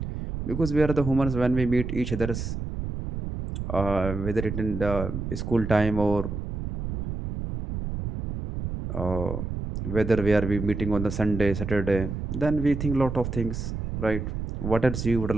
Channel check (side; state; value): right; noise; rumble, 5 dB below the sound